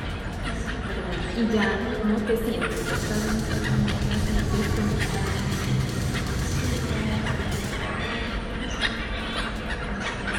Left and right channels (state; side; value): identical; both; correlation 1.00